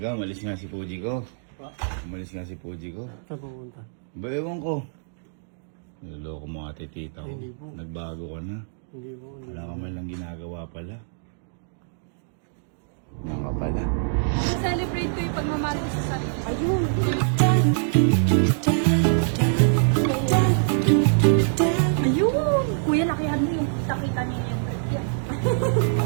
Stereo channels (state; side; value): silent; left; digital silence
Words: ka, umalis nga si Puji ko. Umalis nga si Puji ko. Saan pupunta? Ba, ewan ko. Niloloko mo ate tita ko. Hindi po. Nagbago ka na. Hindi po. Wala ka man lang ginagawa pala. Yan ka pala. Celebrate ko yung pagmamahal ko sa sarili. Ayun! Ayun! Kuya, lakihan mo yung nakita niya yung break yan.